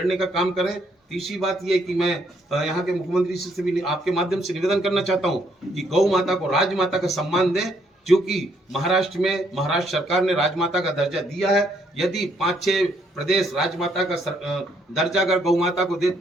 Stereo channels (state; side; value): normal; both; correlation 0.70